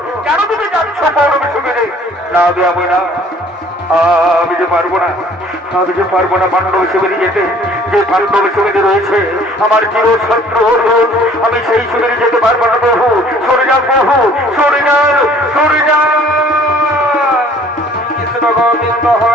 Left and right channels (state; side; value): normal; both; correlation 0.54